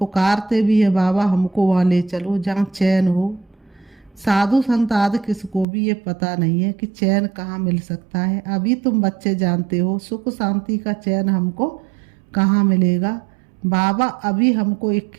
भी है बाबा हमको वहाँ ले चलो जहाँ चैन हो। साधु संत आदि किसको भी ये पता नहीं है कि चैन कहाँ मिल सकता है। अभी तुम बच्चे जानते हो सुख शांति का चैन हमको कहाँ मिलेगा। बाबा अभी हमको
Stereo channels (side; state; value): left; drops out; at 5.7 s